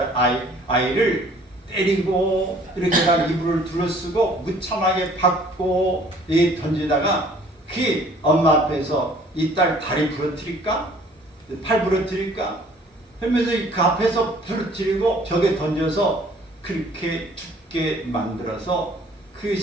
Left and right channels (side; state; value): both; normal; correlation 0.55